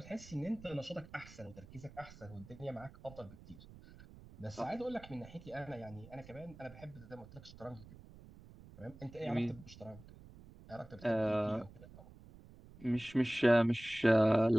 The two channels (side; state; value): right; noise; rumble, 19 dB below the sound